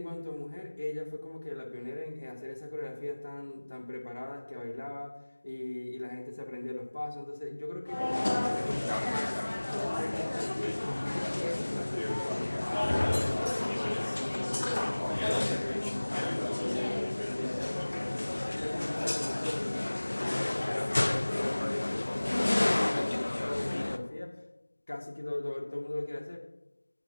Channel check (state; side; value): inverted; both; correlation -1.00